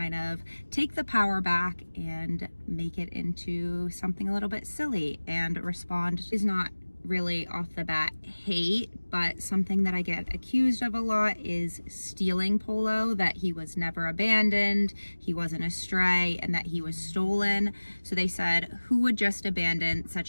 of take the power back and make it into something a little bit silly and respond. Is not really off the bat hate, but something that I get accused of a lot is stealing Polo, that he was never abandoned, he wasn't a stray, and that he was stolen. So they said, who would just abandon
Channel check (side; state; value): both; inverted; correlation -1.00